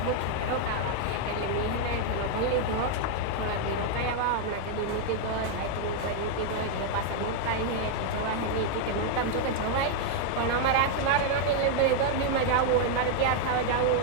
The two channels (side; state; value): both; different; correlation 0.00